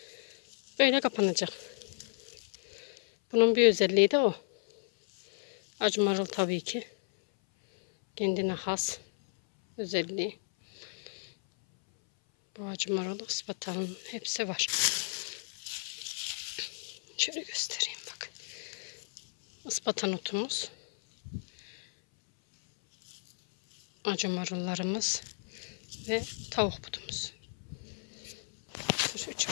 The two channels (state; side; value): silent; right; 56 dB below the other